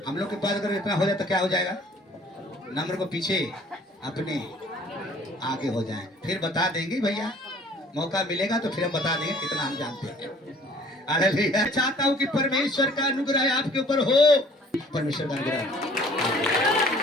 हम लोग के पास अगर इतना हो जाए तो क्या हो जाएगा? नम्र को पीछे, अपने आगे हो जाए, फिर बता देंगे भैया, मौका मिलेगा तो फिर हम बता देंगे कितना हम जानते हैं। हालेलुया। चाहता हूं कि परमेश्वर का अनुग्रह आपके ऊपर हो, परमेश्वर का अनुग्रह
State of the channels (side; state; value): both; normal; correlation 0.53